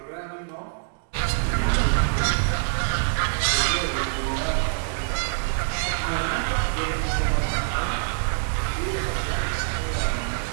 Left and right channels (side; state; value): left; silent; digital silence